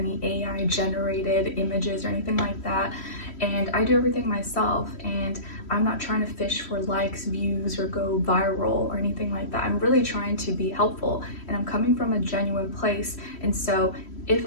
AI generated images or anything like that. And I do everything myself, and I'm not trying to fish for likes, views, or go viral or anything like that. I'm really trying to be helpful, and I'm coming from a genuine place. And so if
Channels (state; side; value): late; right; 3.1 ms